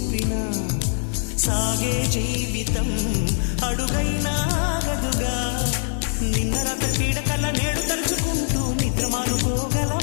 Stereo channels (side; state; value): right; silent; digital silence